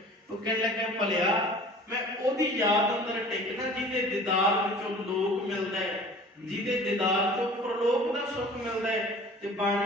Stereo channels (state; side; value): normal; both; correlation 0.45